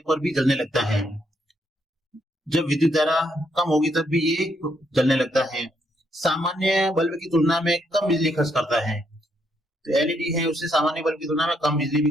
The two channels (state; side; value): normal; both; correlation 0.75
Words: पर भी जलने लगता है। जब विद्युत धारा कम होगी तब भी ये जलने लगता है। सामान्य बल्ब की तुलना में कम बिजली खर्च करता है, तो एलईडी है उससे सामान्य बल्ब की तुलना में कम बिजली भी